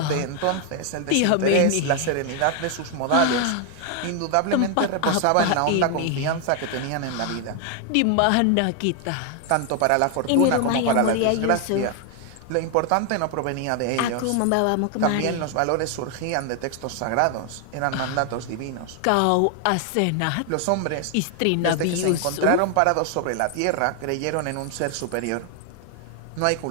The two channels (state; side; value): different; both; correlation 0.00